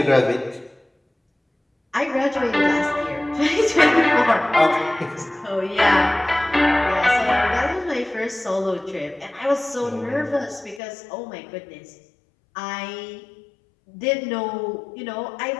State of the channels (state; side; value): drops out; right; at 10.8 s